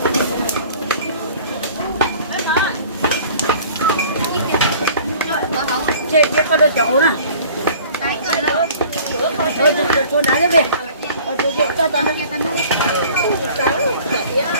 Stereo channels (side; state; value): both; inverted; correlation -0.48